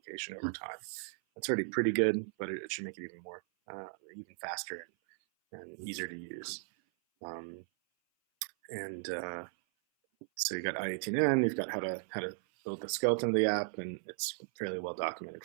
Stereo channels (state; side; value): silent; left; 54 dB below the other